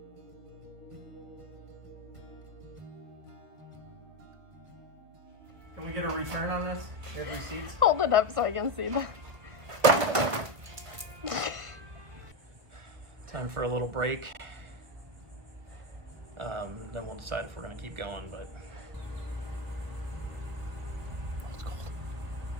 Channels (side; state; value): left; late; 1.3 ms